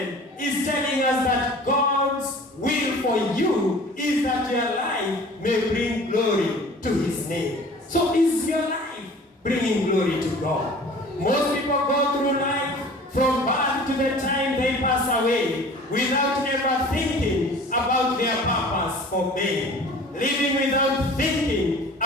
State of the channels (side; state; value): both; normal; correlation 0.45